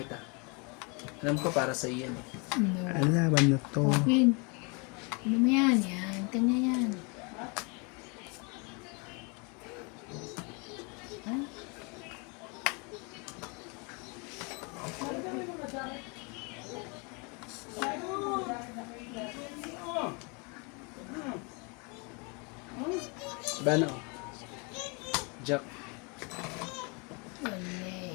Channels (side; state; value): right; quieter; 32.2 dB